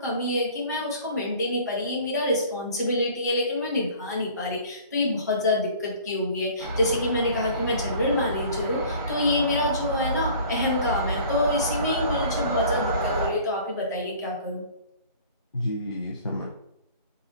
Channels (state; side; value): inverted; both; correlation -0.47